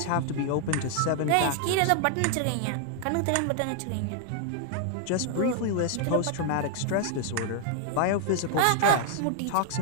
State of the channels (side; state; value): both; different; correlation 0.00